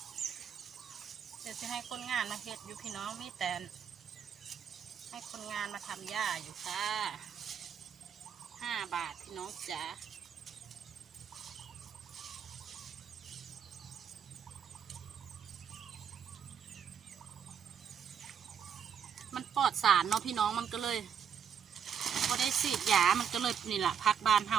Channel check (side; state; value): left; quieter; 7.8 dB